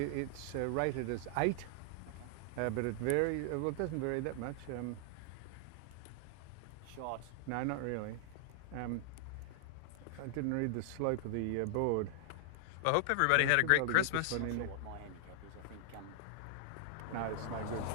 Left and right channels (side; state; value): both; different; correlation 0.00